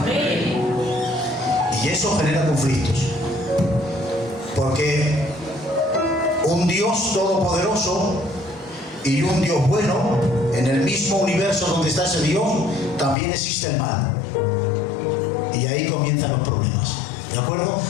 Y eso genera conflictos. Porque un Dios todopoderoso y un Dios bueno, en el mismo universo donde está ese Dios, también existe el mal. Y ahí comienzan los problemas. ¿De acuerdo?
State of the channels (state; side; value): drops out; right; at 13.2 s